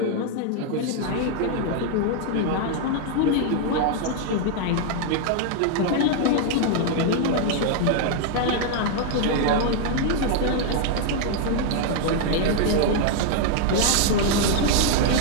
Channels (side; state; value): both; different; correlation 0.00